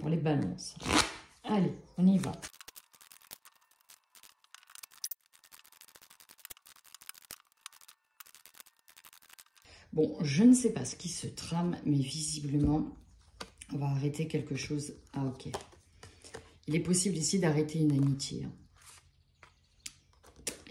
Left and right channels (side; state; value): both; identical; correlation 1.00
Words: les balances. Allez, on y va. Bon, je ne sais pas ce qui se trame, mais visiblement, on va arrêter quelque chose. Ah, ok. Il est possible ici d'arrêter une amitié.